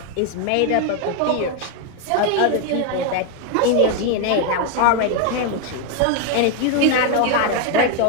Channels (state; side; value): different; both; correlation 0.01